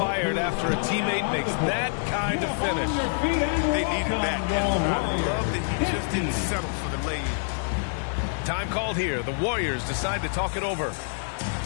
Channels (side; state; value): right; silent; digital silence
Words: after a teammate makes that kind of finish. They needed that. And I love that he just didn't settle for the lay-in. Time called here. The Warriors decide to talk it over.